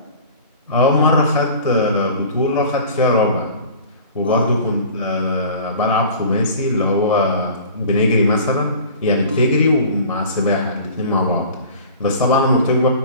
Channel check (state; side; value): inverted; both; correlation -0.43